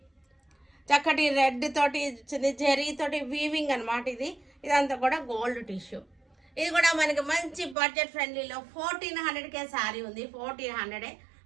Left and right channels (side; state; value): left; drops out; at 7.8 s